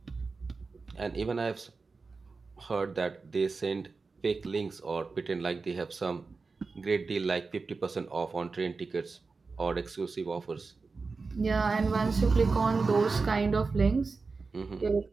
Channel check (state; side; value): quieter; left; 4.3 dB